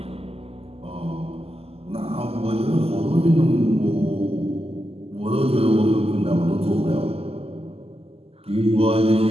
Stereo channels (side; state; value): left; late; 0.29 ms